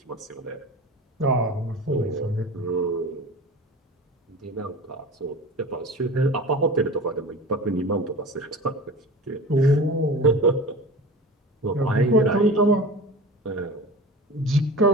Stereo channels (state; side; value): normal; both; correlation 0.34